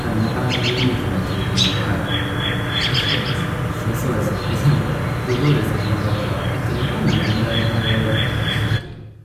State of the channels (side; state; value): both; identical; correlation 1.00